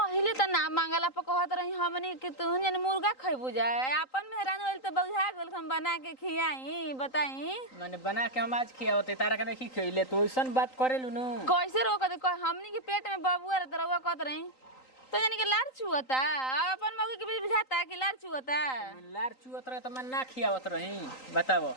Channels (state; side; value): late; right; 3.9 ms